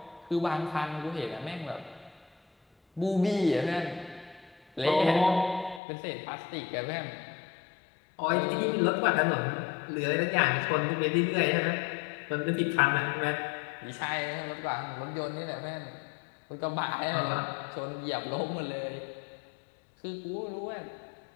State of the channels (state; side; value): drops out; right; at 5.8 s